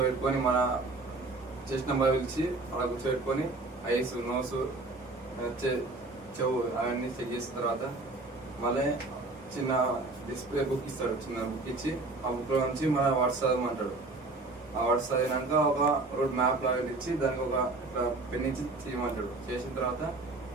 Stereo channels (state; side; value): quieter; left; 3.3 dB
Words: మన చెస్ట్ నెంబర్ పిలిచి అలా కూర్చోబెట్టుకొని ఐస్ నోస్ చెవు అవన్నీ చెక్ చేసిన తర్వాత మళ్ళీ చిన్న డిస్ప్లే బుక్ ఇస్తాడు. చిన్న బుక్ ఇచ్చి ఆ బుక్లో నుంచి మన వర్డ్స్ చదవమంటాడు. ఆ వర్డ్స్ చదివినాక ఒక రోడ్ మ్యాప్ లాగా ఇచ్చి దానికి ఒక పెన్ ఇచ్చి చేయమంటాడు. చేసిన తర్వాత